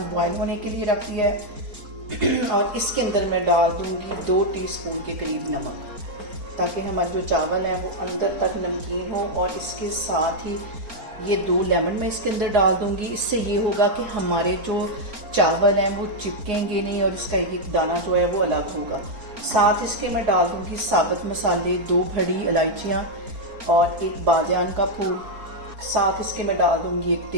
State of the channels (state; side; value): late; left; 4.8 ms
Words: बॉयल होने के लिए रख दिया है और इसके अंदर मैं डाल दूँगी 2 टीस्पून के करीब नमक, ताकि हमारे जो चावल है वो अंदर तक नमकीन हो। और इसके साथ ही ये 2 लेमन मैं इसके अंदर डाल दूंगी। इससे ये होगा कि हमारे जो चावल हैं वो चिपकेंगे नहीं और इसका एक दाना जो है वो अलग होगा। साथ इसके मैं डाल दूंगी साबुत मसाले, 2 बड़ी इलायचियाँ और 1 बादियान का फूल। साथ इसके मैं डाल दूंगी 1